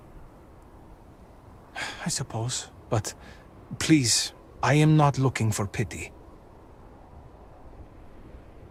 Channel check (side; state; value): both; identical; correlation 1.00